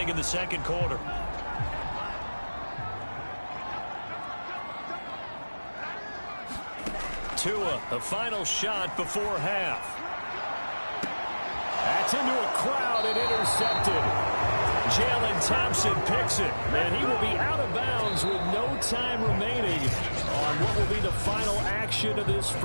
in the second quarter. Tua, the final shot before half. That's into a crowd and intercepted. Jalen Thompson picks it, and he will be out of bounds with no time remaining on what will be the final action of this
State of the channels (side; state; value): both; inverted; correlation -1.00